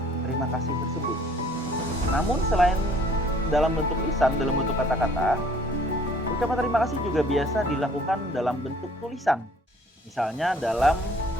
terima kasih tersebut. Namun selain dalam bentuk lisan, dalam bentuk kata-kata, ucapan terima kasih juga biasa dilakukan dalam bentuk tulisan. Misalnya dalam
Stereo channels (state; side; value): normal; both; correlation 0.57